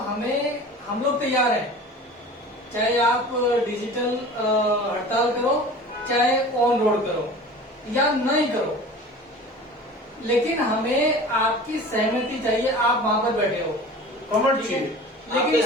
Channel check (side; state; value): both; normal; correlation 0.39